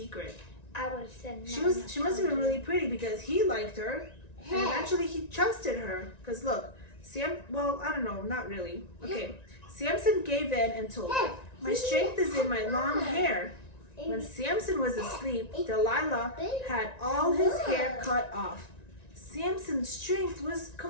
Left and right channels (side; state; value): right; late; 1.9 ms